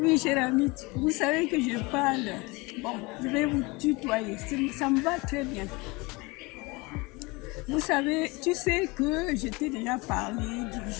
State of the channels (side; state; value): right; quieter; 24.9 dB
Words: cher ami, vous savez que je parle. Bon, je vais vous tutoyer, ça me va très bien. Vous savez, tu sais que je t'ai déjà parlé du